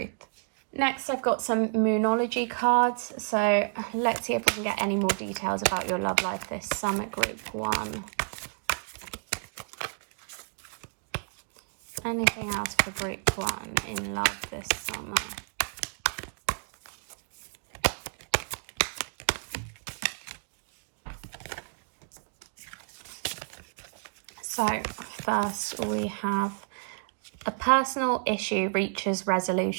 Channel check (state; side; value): silent; left; 58 dB below the other